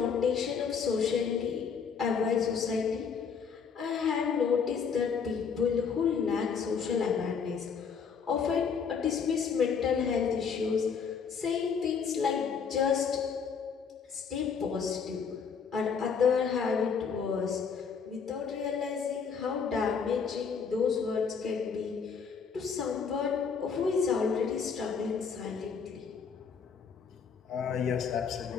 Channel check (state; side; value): quieter; right; 6.2 dB